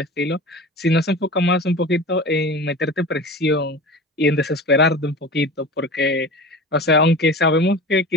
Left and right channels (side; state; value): both; normal; correlation 0.34